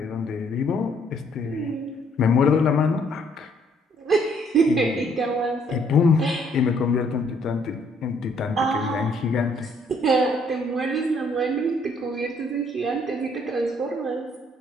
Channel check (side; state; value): both; normal; correlation 0.65